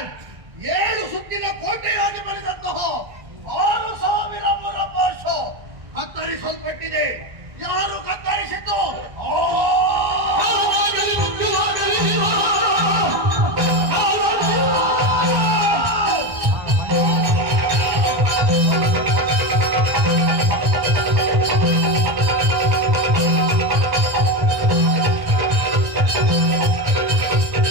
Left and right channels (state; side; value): late; left; 1.4 ms